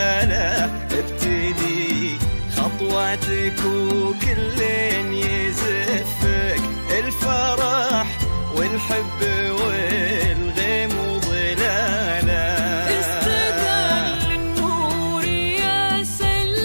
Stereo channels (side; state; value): both; inverted; correlation -1.00